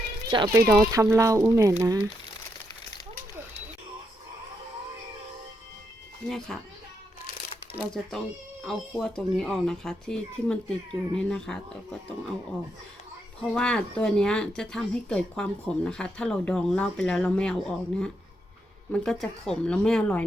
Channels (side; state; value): both; normal; correlation 0.81